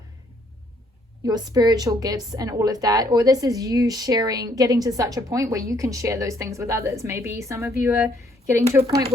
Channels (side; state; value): both; normal; correlation 0.67